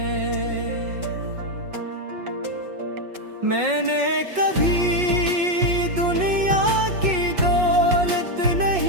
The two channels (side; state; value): left; late; 5.5 ms